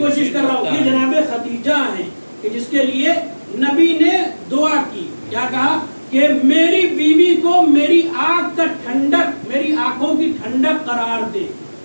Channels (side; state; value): both; inverted; correlation -1.00